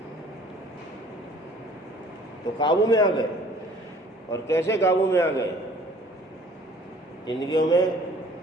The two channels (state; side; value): normal; both; correlation 0.53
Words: تو قابو میں آ گئے۔ اور کیسے قابو میں آ گئے؟ زندگیوں میں